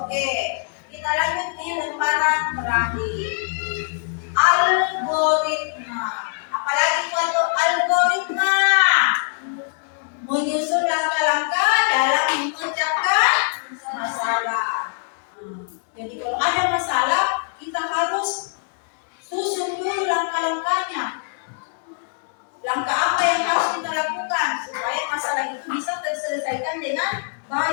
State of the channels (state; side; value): silent; right; 64 dB below the other